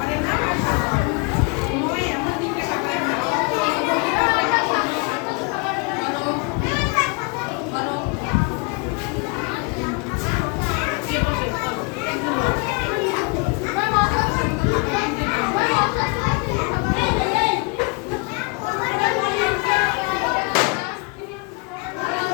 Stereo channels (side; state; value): right; quieter; 29.9 dB